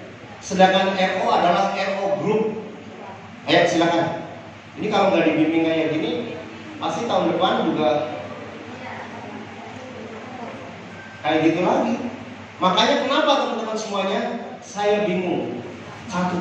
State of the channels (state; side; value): identical; both; correlation 1.00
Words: sedangkan RO adalah RO group. Ayo silakan. Ini kalau nggak dibimbing kayak gini, pasti tahun depan juga kayak gitu lagi. Makanya kenapa teman-teman semuanya saya bingung.